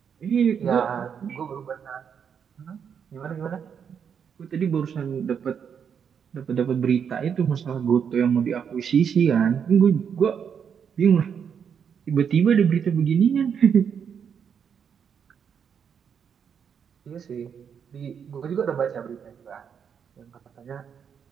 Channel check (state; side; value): quieter; left; 7.4 dB